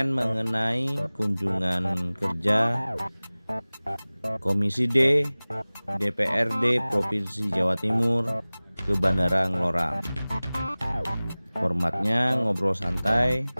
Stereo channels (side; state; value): both; inverted; correlation -0.99